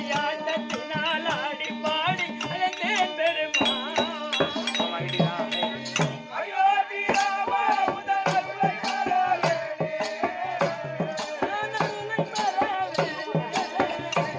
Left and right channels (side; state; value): both; identical; correlation 1.00